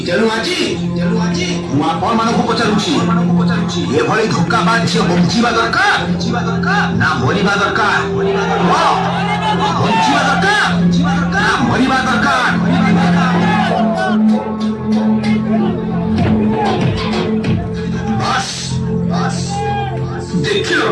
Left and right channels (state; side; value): identical; both; correlation 1.00